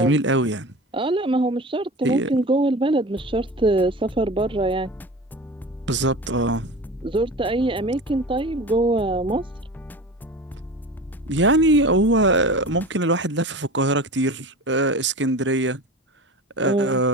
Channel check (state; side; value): normal; both; correlation 0.33